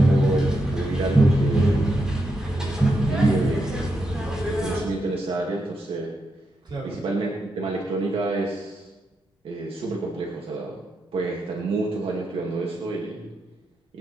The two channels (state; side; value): normal; both; correlation 0.84